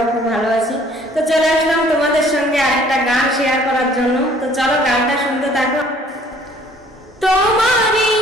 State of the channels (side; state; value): both; normal; correlation 0.57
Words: খুব ভালো আছি। তো চলে আসলাম তোমাদের সঙ্গে আরেকটা গান শেয়ার করার জন্য। তো চলো গানটা শুনতে থাকো। তোমারই